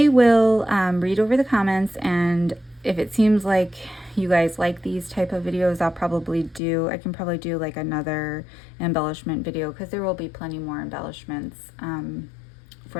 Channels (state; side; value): drops out; right; at 6.6 s